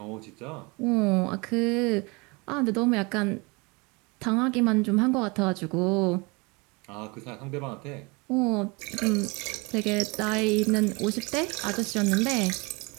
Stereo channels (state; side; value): quieter; left; 27.8 dB